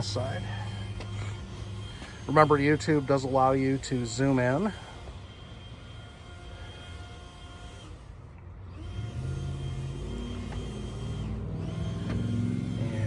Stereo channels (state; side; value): identical; both; correlation 1.00